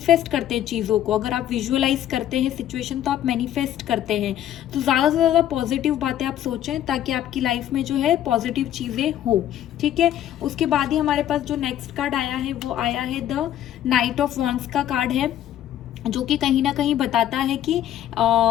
करते हैं चीज़ों को, अगर आप विजुअलाइज करते हैं सिचुएशन तो आप मैनिफेस्ट करते हैं। तो ज़्यादा से ज़्यादा पॉजिटिव बातें आप सोचें ताकि आपकी लाइफ में जो है पॉजिटिव चीज़ें हो। ठीक है, उसके बाद ही हमारे पास जो नेक्स्ट कार्ड आया है वो आया है द नाइट ऑफ वॉन्ड्स का कार्ड है, जो कि कहीं ना कहीं बताता है कि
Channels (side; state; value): right; quieter; 11.7 dB